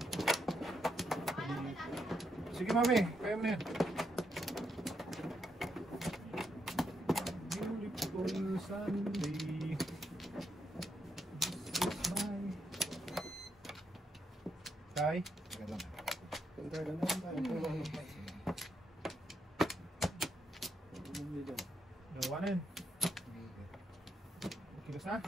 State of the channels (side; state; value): both; normal; correlation 0.79